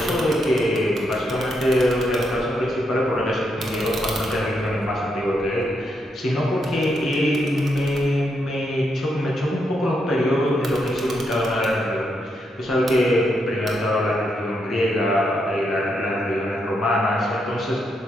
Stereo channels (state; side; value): normal; both; correlation 0.80